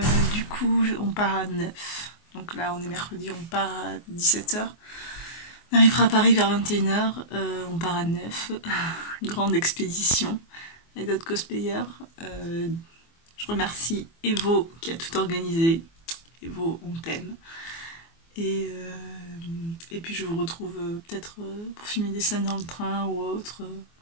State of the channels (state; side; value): late; right; 24 ms